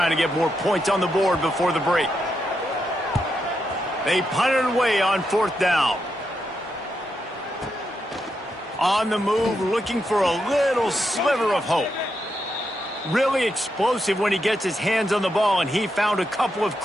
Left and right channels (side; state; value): both; normal; correlation 0.83